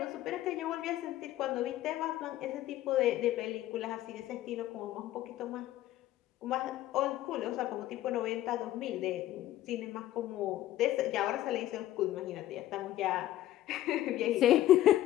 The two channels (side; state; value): right; quieter; 13.9 dB